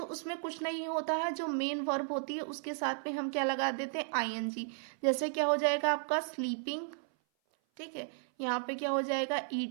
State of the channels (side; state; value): left; silent; 55 dB below the other